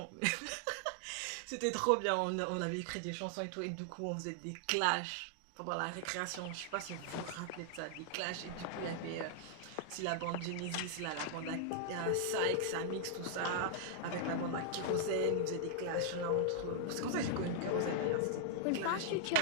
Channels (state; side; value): different; both; correlation 0.00